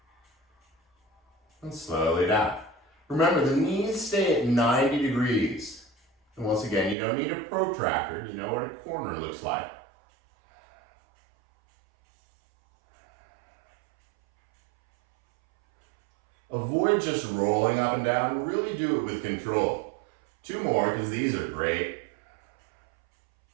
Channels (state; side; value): drops out; left; at 7.0 s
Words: And slowly down. Remember, the knees stay at 90 degrees. And once again, you don't need a protractor. You know what a corner looks like. Avoid just rolling up and down. Really do it with control. 2 more, because these are great.